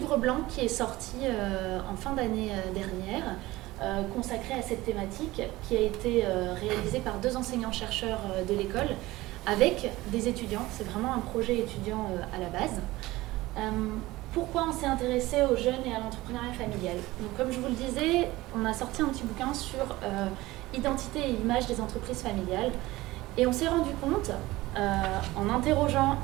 blanc qui est sorti en fin d'année dernière, consacré à cette thématique, qui a été réalisé par 2 enseignants-chercheurs de l'école, avec des étudiants. C'est vraiment un projet étudiant à la base. Pourquoi on s'est intéressé aux jeunes et à l'entrepreneuriat familial? Donc, comme je vous le disais, on a sorti un petit bouquin sur identité et image des entreprises familiales. Et on s'est rendu compte, en interrogeant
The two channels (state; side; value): quieter; left; 18.7 dB